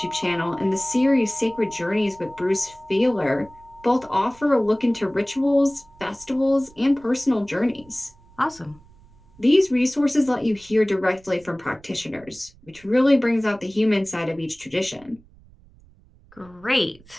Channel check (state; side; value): noise; right; rumble, 27 dB below the sound